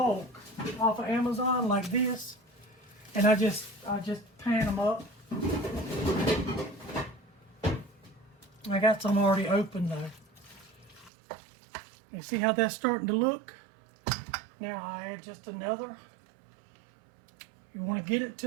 off of Amazon like this, and I just pan them up. I got some already open though. You see how that's starting to look? Now I add just another. You want to get it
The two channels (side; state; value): left; drops out; at 11.1 s